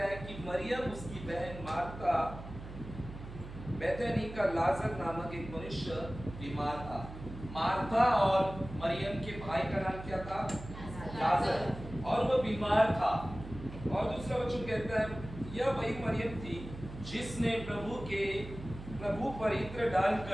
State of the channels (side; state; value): right; noise; hum, 12 dB below the sound